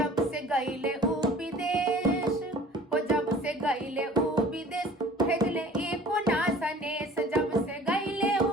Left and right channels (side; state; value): both; normal; correlation 0.47